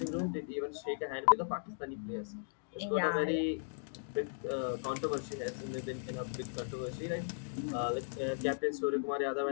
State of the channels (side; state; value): right; silent; digital silence